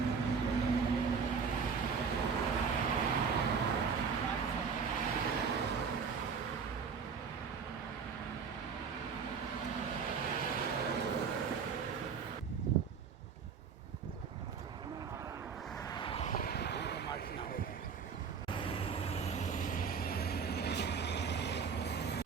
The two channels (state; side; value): quieter; left; 6.0 dB